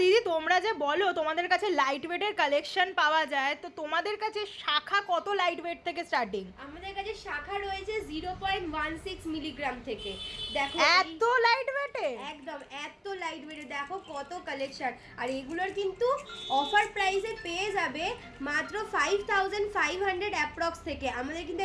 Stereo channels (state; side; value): identical; both; correlation 1.00